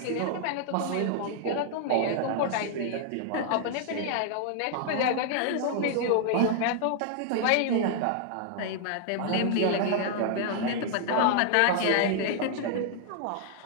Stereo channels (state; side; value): different; both; correlation 0.00